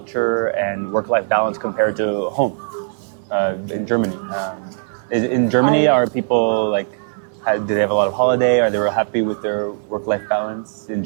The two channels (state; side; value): silent; left; digital silence